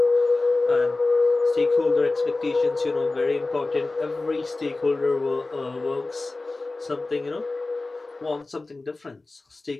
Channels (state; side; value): quieter; right; 3.3 dB